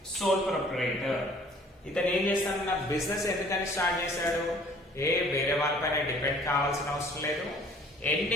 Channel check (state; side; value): normal; both; correlation 0.54